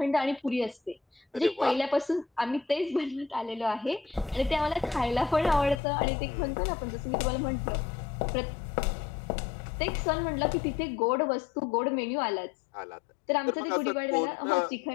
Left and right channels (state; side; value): drops out; right; at 5.8 s